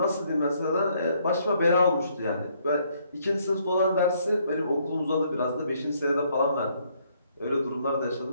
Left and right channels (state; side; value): inverted; both; correlation -0.69